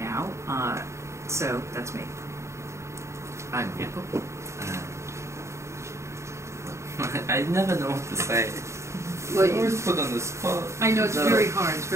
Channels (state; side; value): late; left; 0.14 ms